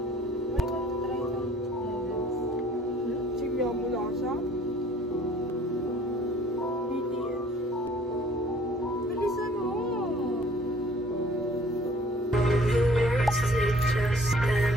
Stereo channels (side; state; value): both; normal; correlation 0.55